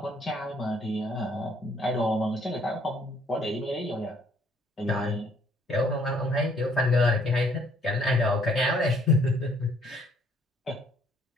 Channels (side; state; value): both; normal; correlation 0.64